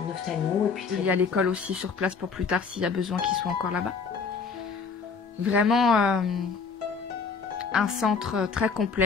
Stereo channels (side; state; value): right; quieter; 5.2 dB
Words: ophtalmo. Et puis il y a l'école aussi sur place pour plus tard s'il y a besoin qu'ils soient encore là-bas. Vraiment un centre très